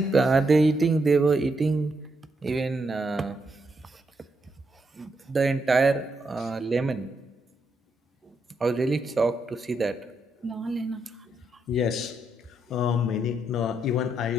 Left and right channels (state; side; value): normal; both; correlation 0.80